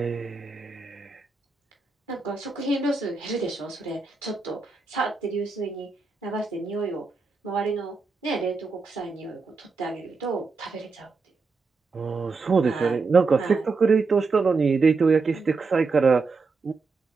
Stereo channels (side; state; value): left; quieter; 4.3 dB